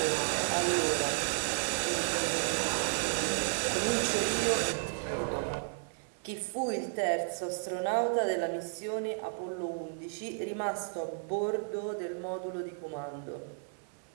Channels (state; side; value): silent; left; digital silence